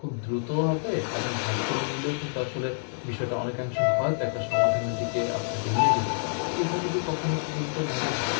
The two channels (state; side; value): silent; right; digital silence